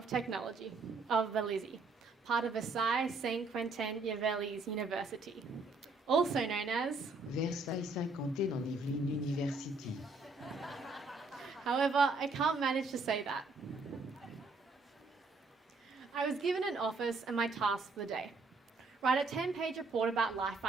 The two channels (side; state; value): left; quieter; 3.6 dB